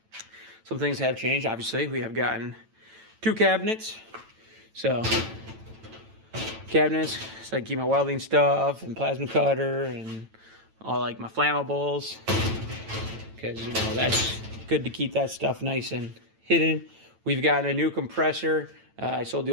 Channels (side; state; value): left; late; 9.0 ms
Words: Some things have changed. Obviously, we have gotten 2 cabinets. So, cabinets, so I keep my welding stuff and plasma cutter and all like my flammables. Because, you know, that's good to keep that stuff nice and hidden. We've gotten a new compressor. I sold the